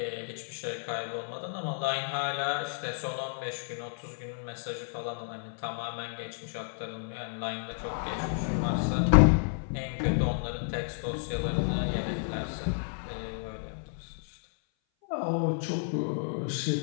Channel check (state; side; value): silent; right; 57 dB below the other